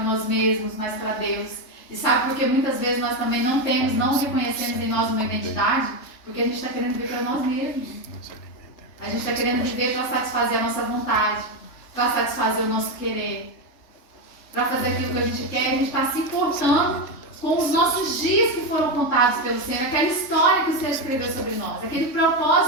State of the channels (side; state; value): right; late; 3.4 ms